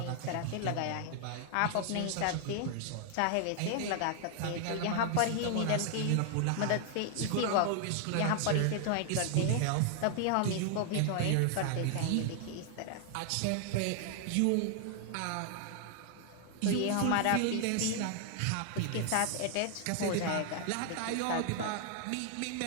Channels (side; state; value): both; different; correlation 0.00